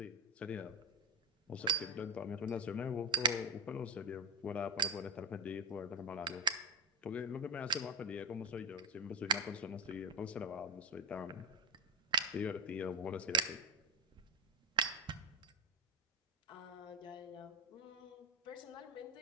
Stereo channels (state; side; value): normal; both; correlation 0.17